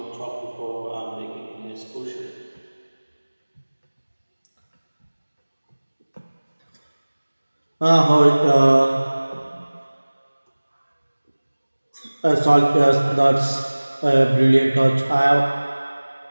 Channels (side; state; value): both; inverted; correlation -1.00